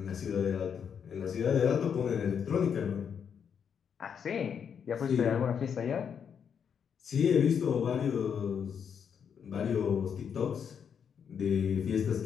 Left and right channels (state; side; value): quieter; right; 7.4 dB